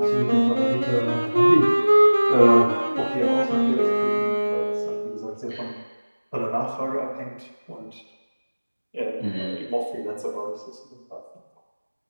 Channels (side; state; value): both; inverted; correlation -1.00